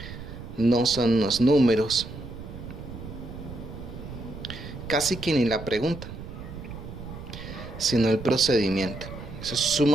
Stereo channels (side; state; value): right; noise; rumble, 11 dB below the sound